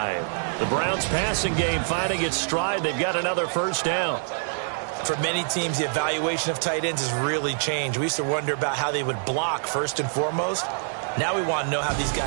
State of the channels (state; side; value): silent; left; digital silence